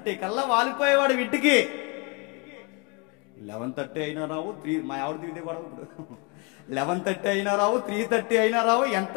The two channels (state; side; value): quieter; right; 31.2 dB